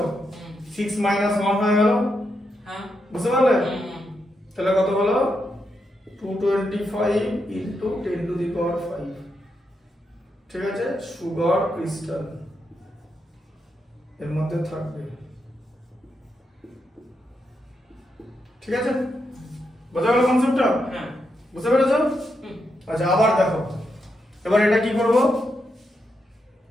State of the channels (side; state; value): both; normal; correlation 0.83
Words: 6 minus 1 হয়ে গেল বুঝতে পারলে তাহলে কত হলো 225 into 10 to the power 5 ঠিক আছে সুগার ক্রিস্টাল এর মধ্যে থাকবে ঠিক আছে বুঝা গেল কনসেপ্টটা বুঝতে পেরেছো আচ্ছা আবার দেখো এবার এটা কি করব